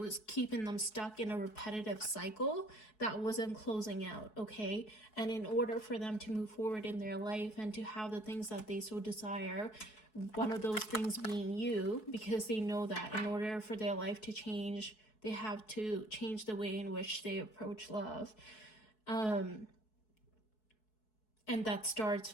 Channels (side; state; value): right; late; 4.7 ms